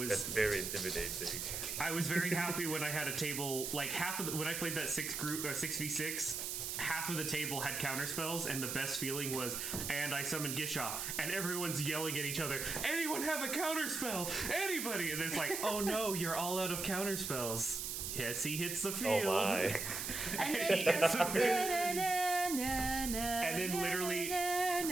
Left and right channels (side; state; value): right; noise; hiss, 3 dB below the sound